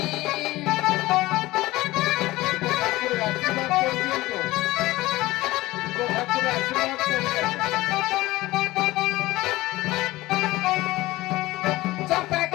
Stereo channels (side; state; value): right; quieter; 18.5 dB